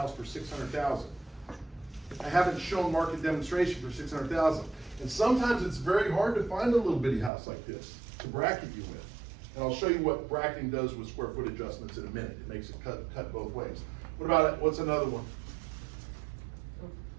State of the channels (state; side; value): drops out; left; at 7.3 s